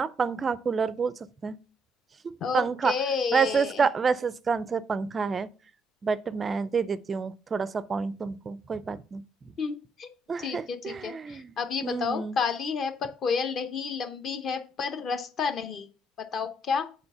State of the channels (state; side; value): normal; both; correlation 0.74